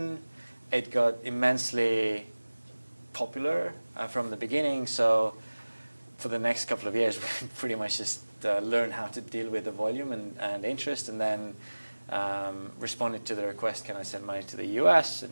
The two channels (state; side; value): inverted; both; correlation -1.00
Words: It got immensely popular from the beginning. So for the next couple of years, we pretty much just learned how to deal with the volume and interest, and then responded to the request, can I send money to the US